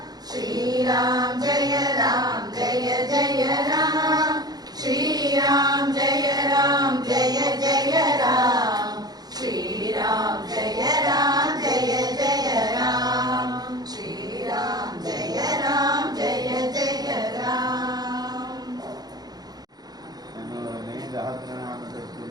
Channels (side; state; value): left; late; 0.19 ms